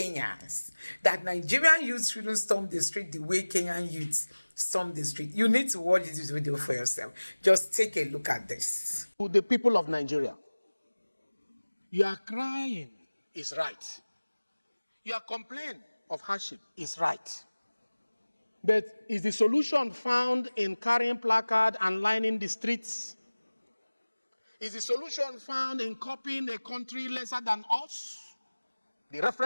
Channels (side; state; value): both; inverted; correlation -1.00